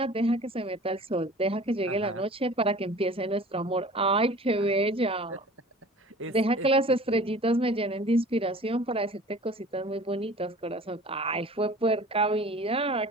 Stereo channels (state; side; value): normal; both; correlation 0.44